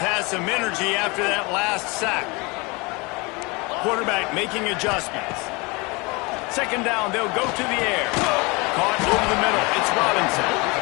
some energy after that last sack. Quarterback making adjustments. 2nd down, they'll go to the air. Caught over the middle. It's Robinson.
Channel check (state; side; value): quieter; right; 26.9 dB